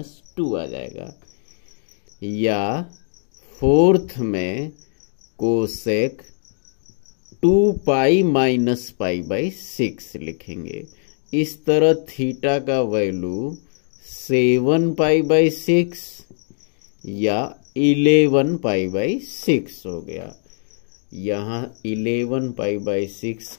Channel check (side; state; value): right; silent; digital silence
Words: आ जाएगा। या फोर्थ में कोसेक 2π माइनस π/6 लिखेंगे। इस तरह थीटा का वैल्यू 7 π/6 या 11 π/6 हो गया। यहाँ 11 π/6